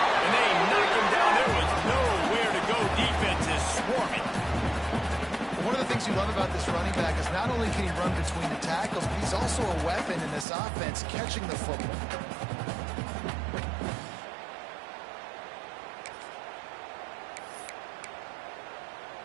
And they knock him down. There was nowhere to go. Defense is swarming. One of the things you love about this running back is not only can he run between the tackles, but he's also a weapon in this offense, catching the football.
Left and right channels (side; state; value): left; drops out; at 10.5 s